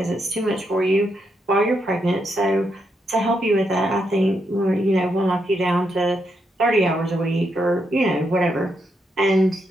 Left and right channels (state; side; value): normal; both; correlation 0.80